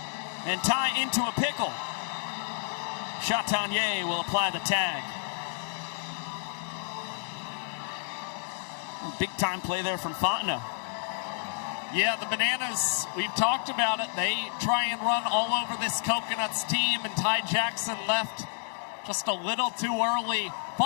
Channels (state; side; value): silent; right; digital silence